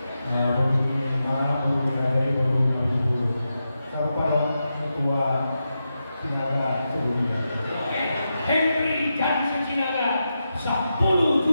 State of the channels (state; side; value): inverted; both; correlation -0.88